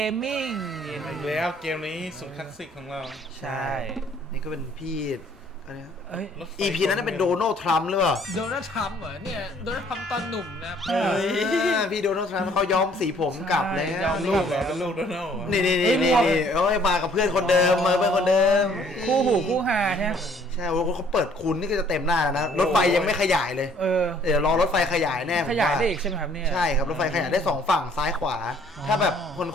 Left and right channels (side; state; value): both; normal; correlation 0.60